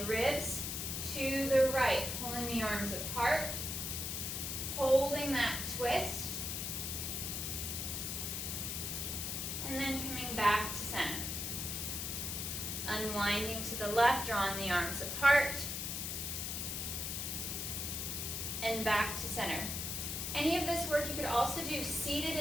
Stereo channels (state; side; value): noise; left; hiss, 3 dB below the sound